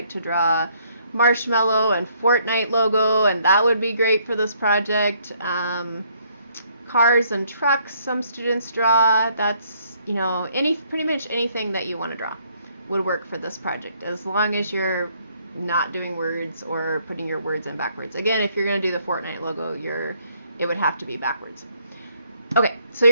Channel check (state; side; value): inverted; both; correlation -0.67